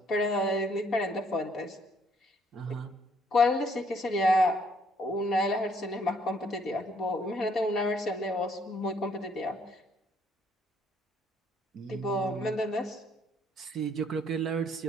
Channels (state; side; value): normal; both; correlation 0.66